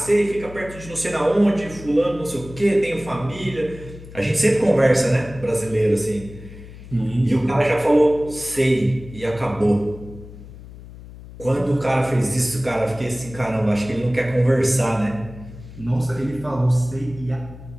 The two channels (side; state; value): left; noise; hum, 16 dB below the sound